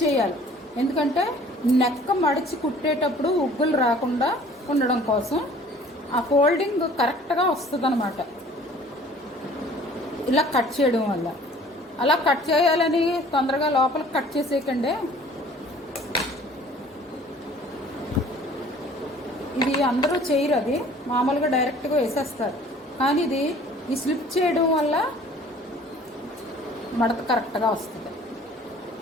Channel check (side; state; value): both; normal; correlation 0.51